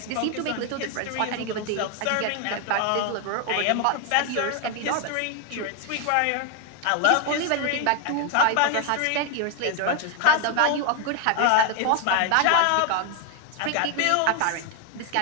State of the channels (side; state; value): both; different; correlation 0.01